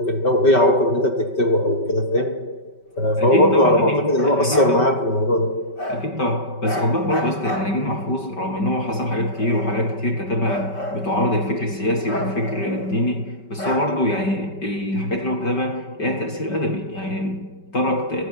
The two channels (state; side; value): late; right; 5.2 ms